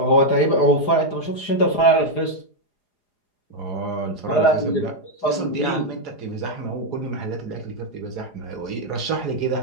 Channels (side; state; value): right; late; 4.9 ms